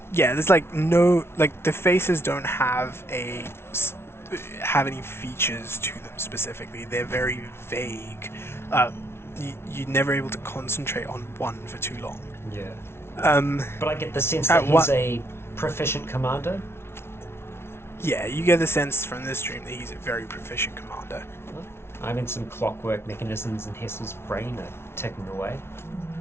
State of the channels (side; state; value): right; late; 0.12 ms